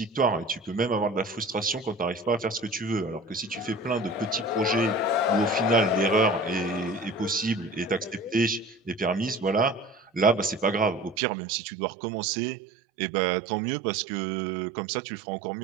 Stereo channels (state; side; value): drops out; left; at 11.2 s